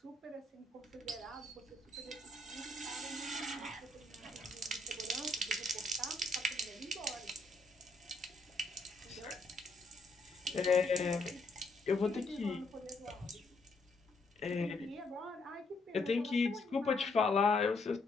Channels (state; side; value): quieter; right; 3.0 dB